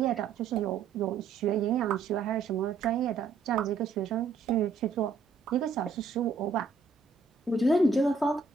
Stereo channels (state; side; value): quieter; left; 4.8 dB